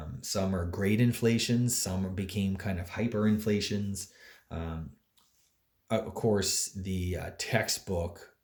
Some are great inflations, some became kind of hyperinflations. Um, of course, the textbook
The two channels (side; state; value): both; identical; correlation 1.00